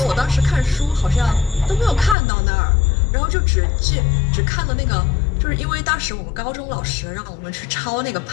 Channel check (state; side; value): drops out; right; at 2.1 s